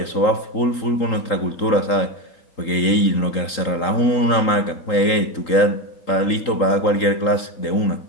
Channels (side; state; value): right; late; 3.8 ms